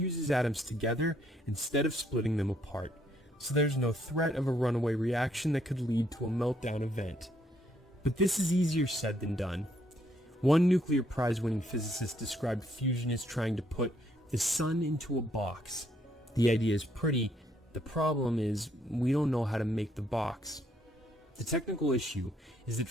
atoms together instead of splitting them apart, so there's no threat of a runaway reaction that could lead to a meltdown event. But this is easier said than done. One nuclear prize-winning physicist described fusion as trying to put the sun into a box. The idea is pretty. The problem is we don't know how to make the box. The technical issue is that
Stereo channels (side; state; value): both; normal; correlation 0.71